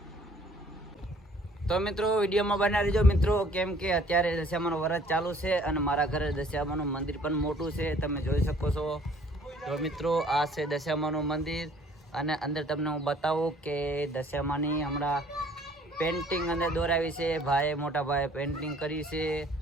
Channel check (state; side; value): normal; both; correlation 0.57